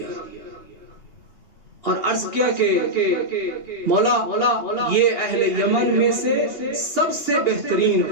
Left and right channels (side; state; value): right; late; 2.8 ms